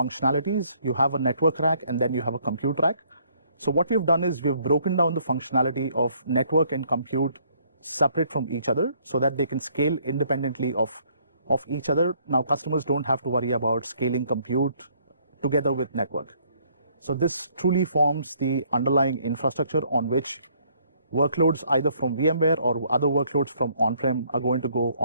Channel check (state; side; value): inverted; both; correlation -0.65